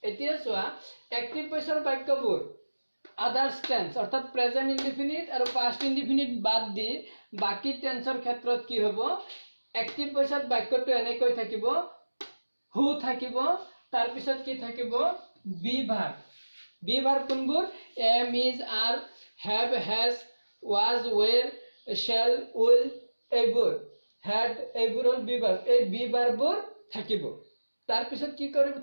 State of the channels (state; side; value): inverted; both; correlation -1.00